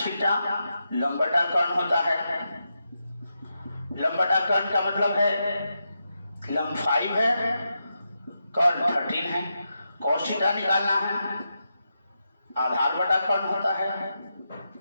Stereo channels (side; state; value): both; inverted; correlation -0.86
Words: लंब बटा कर्ण होता है, लंब बटा कर्ण का मतलब है लंब 5 है, कर्ण 13 है। cos थीटा निकालना है, आधार बटा कर्ण होता है।